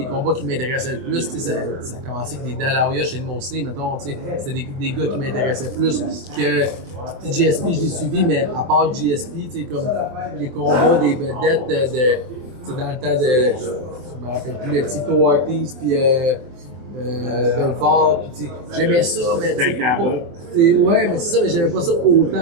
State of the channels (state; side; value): late; left; 24 ms